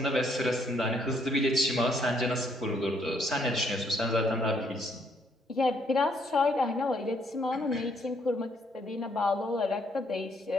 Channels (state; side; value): normal; both; correlation 0.70